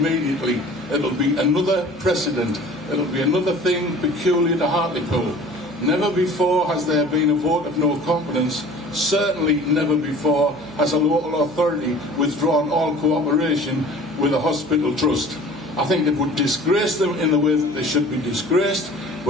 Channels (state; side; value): noise; right; hum, 23 dB below the sound